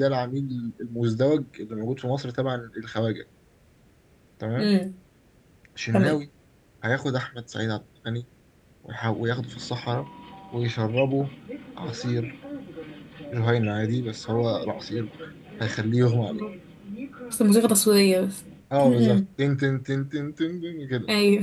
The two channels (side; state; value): both; identical; correlation 1.00